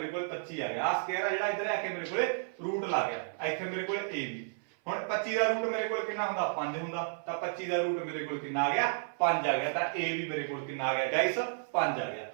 को 25 आ गया आ स्क्वायर जिहड़ा इधर आके मेरे को रूट ला गया इत्थे मेरे को ए बी हुण 25 दा रूट मेरे को कितना हुंदा 5 हुंदा तां 25 दा रूट मेरे को कितना आ गया 5 आ गया तां ए बी मेरे को कितना आ गया गाइस 5 आ गया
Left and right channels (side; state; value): left; silent; 56 dB below the other